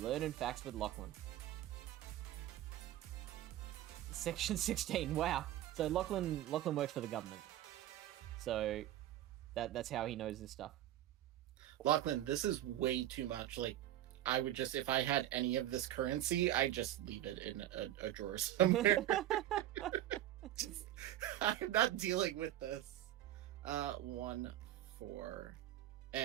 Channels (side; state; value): left; quieter; 13.0 dB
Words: facts with Lachlan. Section 16, wow. So Lachlan works for the government. So that's how he knows this stuff. Lachlan, this is way too much. Like, I would just, if I had any of this currency, I'd just leave it in a drawer somewhere. I'm not dealing with this. 1, 4.